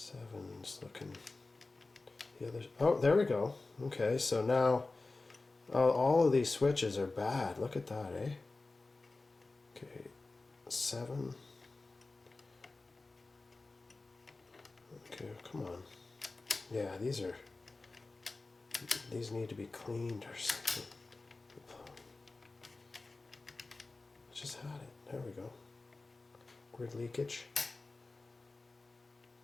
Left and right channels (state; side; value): quieter; right; 3.4 dB